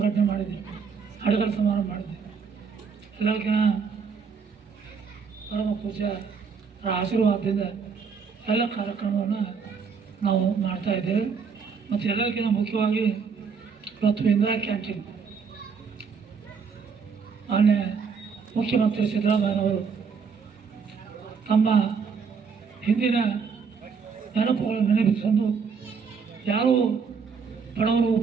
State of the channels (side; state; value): left; quieter; 5.7 dB